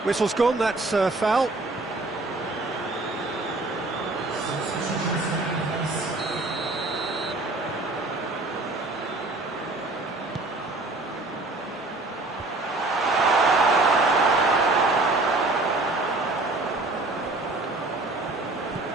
Whistle's gone, that's foul.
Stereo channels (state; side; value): quieter; left; 3.0 dB